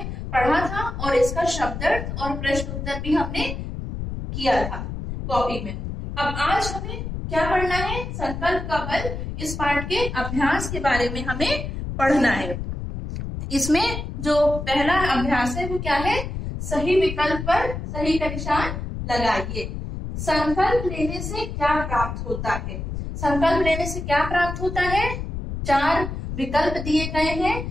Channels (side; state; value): left; noise; rumble, 6 dB below the sound